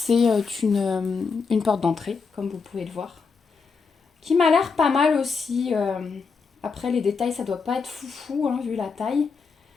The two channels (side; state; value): right; quieter; 5.1 dB